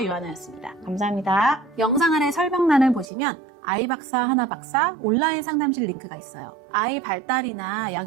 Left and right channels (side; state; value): left; drops out; at 3.1 s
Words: 요하나였습니다. 감사합니다. 영상 아래 설명란을 보시면 아이박사 하나박사 온라인 상담실 링크가 있어요. 아이 발달이나